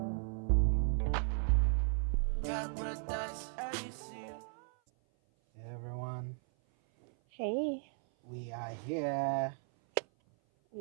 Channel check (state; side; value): silent; left; 54 dB below the other